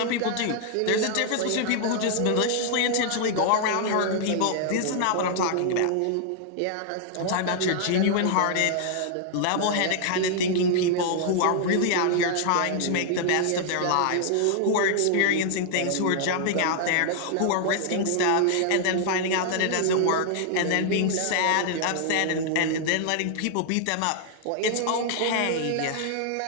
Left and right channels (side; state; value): both; different; correlation 0.00